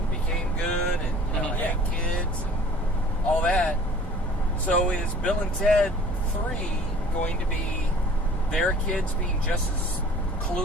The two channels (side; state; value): both; normal; correlation 0.49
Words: became good and had kids and all that. So is Bill and Ted 3 going to be their kids being just as